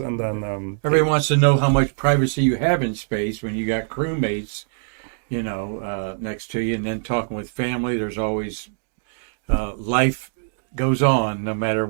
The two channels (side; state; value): left; silent; digital silence